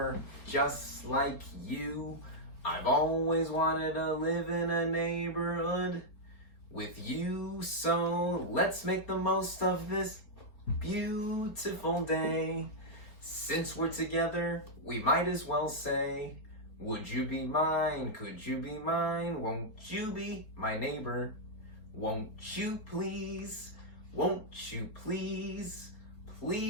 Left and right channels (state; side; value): late; right; 4.5 ms